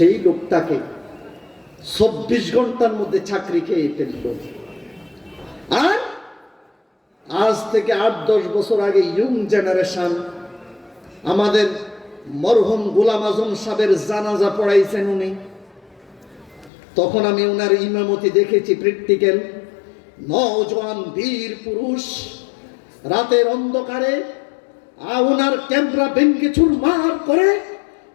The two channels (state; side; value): drops out; right; at 16.7 s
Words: লোকটাকে 24 ঘন্টার মধ্যে চাকরি খেয়ে ফেলল। আর আজ থেকে 8-10 বছর আগে ইয়ং জেনারেশন আমাদের মরহুম গোলাম আজম সাহেবের জানাজা পড়াইছেন উনি। তখন আমি ওনার ইমামতি দেখেছি, প্র্যাকটিক্যাল। নওজোয়ান বীর পুরুষ রাতের অন্ধকারে ওনার ক্যামেরা ভেঙ্গে চুরমার করে